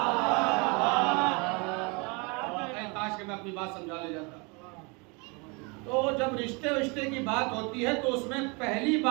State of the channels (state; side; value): quieter; left; 30.3 dB